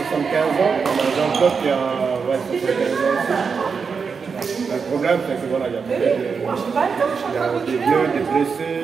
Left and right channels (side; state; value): left; quieter; 5.6 dB